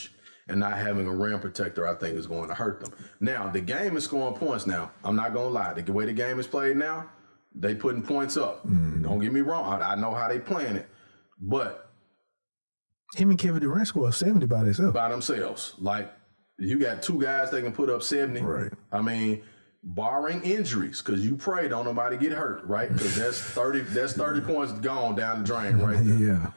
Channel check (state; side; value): inverted; both; correlation -1.00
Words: And not having a rim protector, I think, is going to hurt them. Now, the game is scoring points now. I'm not going to lie. The way the game is played now, they putting points up. Don't get me wrong. I know how they playing it. But him and Kevin Durant scored 70 by themselves. Like, you got 2 guys that can put up 70. Right. I mean, barring injuries, because you pray don't nobody get hurt, right? Because that's 30 points gone down the drain right there. Yeah.